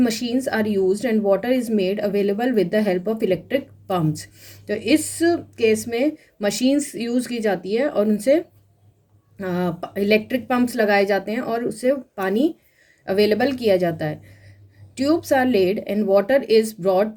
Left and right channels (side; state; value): both; identical; correlation 1.00